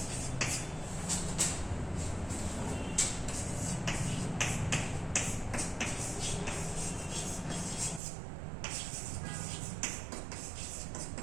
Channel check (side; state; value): left; drops out; at 8.0 s